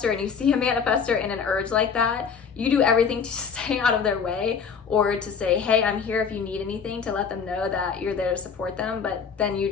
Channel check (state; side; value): quieter; right; 6.2 dB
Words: and you see a manifestor in an urge like that, you do everything to stay out of their way or to say, hey, I'm here if you need anything, to let them know that you're there to support them. But then you